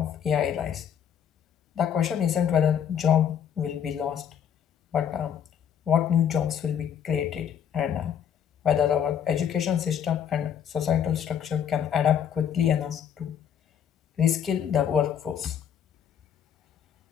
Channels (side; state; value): right; quieter; 8.7 dB